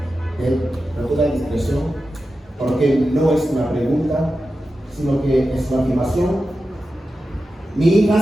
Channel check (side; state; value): both; normal; correlation 0.92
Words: él con toda discreción, porque no es una pregunta, sino que es una afirmación. Mi